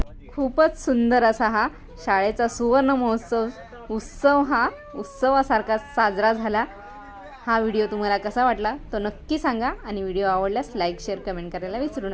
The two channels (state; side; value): identical; both; correlation 1.00